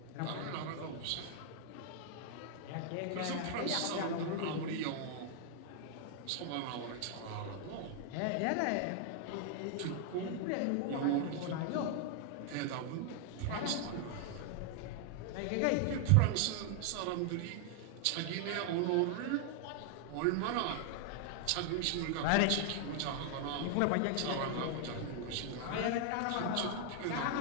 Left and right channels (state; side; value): different; both; correlation 0.00